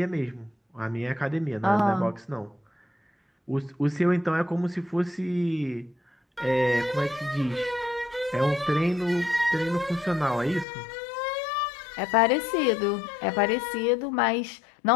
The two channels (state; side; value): drops out; right; at 10.7 s